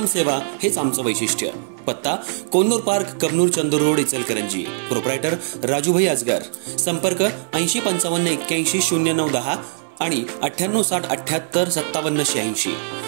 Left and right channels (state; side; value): silent; left; 65 dB below the other